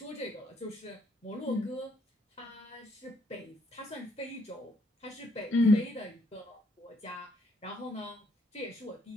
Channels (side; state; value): both; normal; correlation 0.69